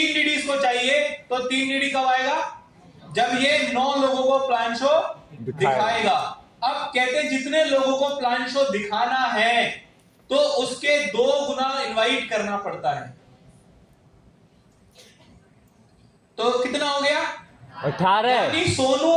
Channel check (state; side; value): identical; both; correlation 1.00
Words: डीडी इसको चाहिए तो 3 डीडी कब आएगा? जब ये 9 लोगों को प्लान शो दिखाएगा। अब कहते हैं जितने लोगों को प्लान शो दिखाना है तो उसके 2 गुना इनवाइट करना पड़ता है। तो कितना हो गया? 18। यानी